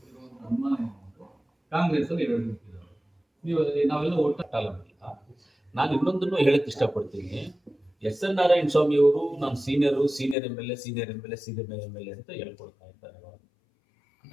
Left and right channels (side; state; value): right; drops out; at 10.4 s